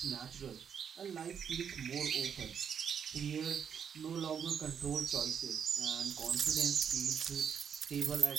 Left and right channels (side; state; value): left; quieter; 7.5 dB